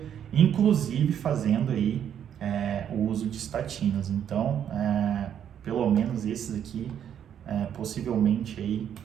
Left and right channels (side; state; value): left; quieter; 9.2 dB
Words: inclusive fazendo aí o uso de estatinas. Então, pelo menos esses aqui, possivelmente aí